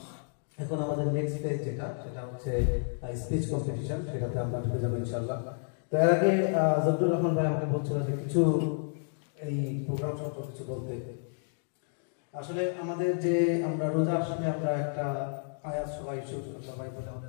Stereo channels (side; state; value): right; silent; digital silence